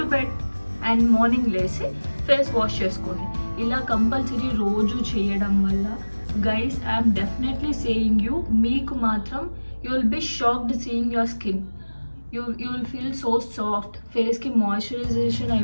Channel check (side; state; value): both; inverted; correlation -1.00